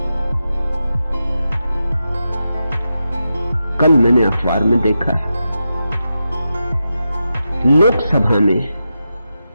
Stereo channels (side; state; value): both; inverted; correlation -0.89